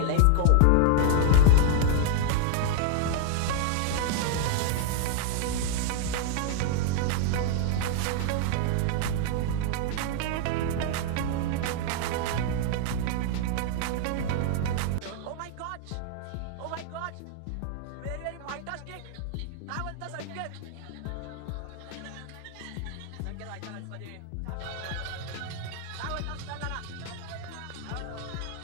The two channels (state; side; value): different; both; correlation 0.00